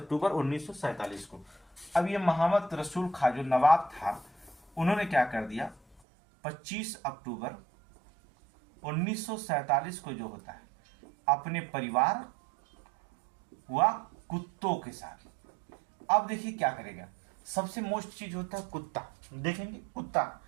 1947 को। अब ये मोहम्मद रसूल खां जो नवाब था, उन्होंने क्या कर दिया, 25 अक्टूबर 1947 को जो होता है अपने परिवार व कुत्तों के साथ, अब देखिए क्या करेगा, सबसे मोस्ट चीज होता है कुत्ता, देखेंगे कुत्ता।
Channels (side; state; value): left; drops out; at 6.0 s